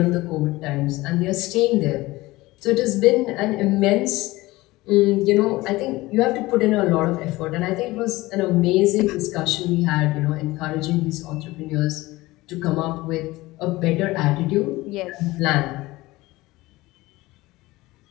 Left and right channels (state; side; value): quieter; right; 19.6 dB